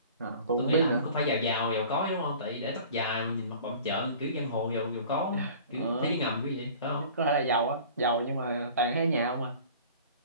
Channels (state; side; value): inverted; both; correlation -0.45